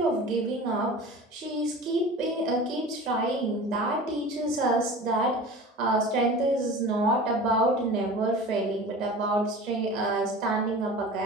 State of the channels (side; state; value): both; normal; correlation 0.37